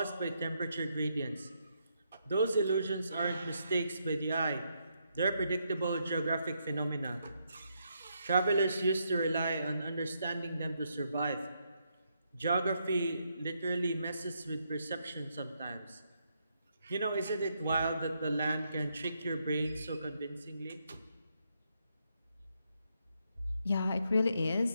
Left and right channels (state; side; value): inverted; both; correlation -0.78